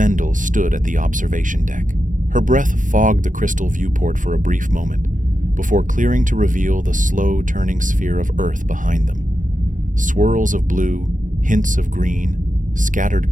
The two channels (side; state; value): left; late; 0.38 ms